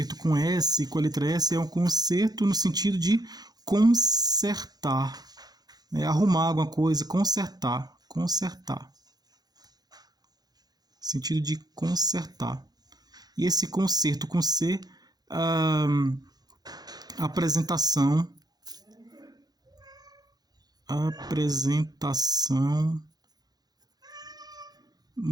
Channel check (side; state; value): left; late; 0.19 ms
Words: com S, com a letra S, é um concerto no sentido de consertar, arrumar alguma coisa, consertar, sentido de consertar. E esse concerto com C, apresentação